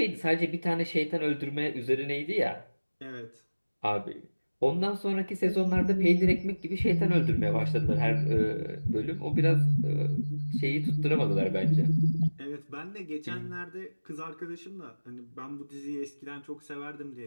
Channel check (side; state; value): both; inverted; correlation -1.00